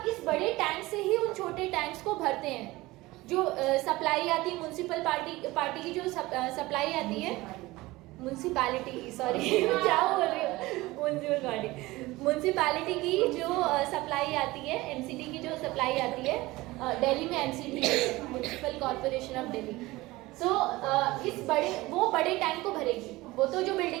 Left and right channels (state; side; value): quieter; left; 19.9 dB